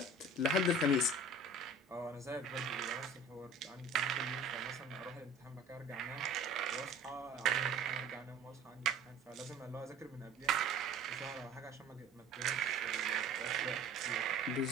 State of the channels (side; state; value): both; normal; correlation 0.46